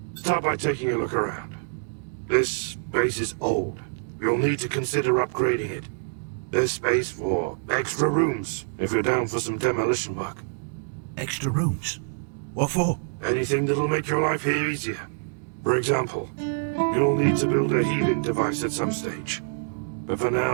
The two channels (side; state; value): left; silent; digital silence